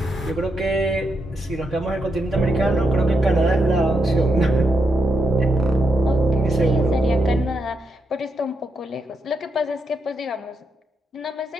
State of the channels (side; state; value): both; normal; correlation 0.82